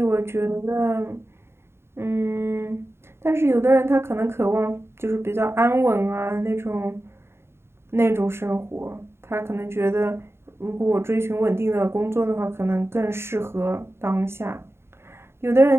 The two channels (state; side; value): late; left; 0.12 ms